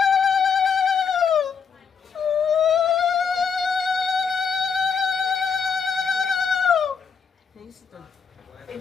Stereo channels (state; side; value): quieter; right; 6.2 dB